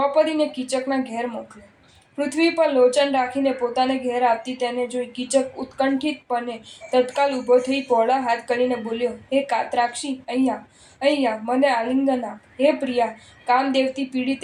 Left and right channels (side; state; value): both; identical; correlation 1.00